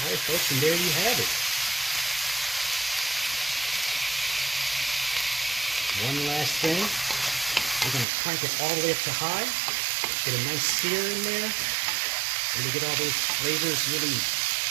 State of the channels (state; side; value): drops out; left; at 8.1 s